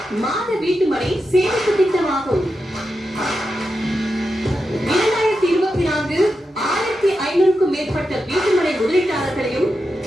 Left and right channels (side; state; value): both; normal; correlation 0.88